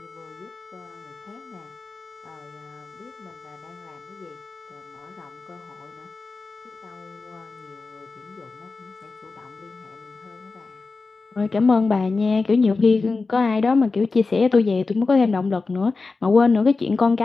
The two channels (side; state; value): right; quieter; 4.0 dB